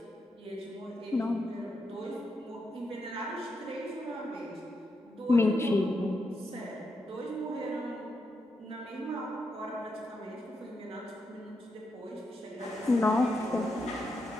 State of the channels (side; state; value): both; normal; correlation 0.83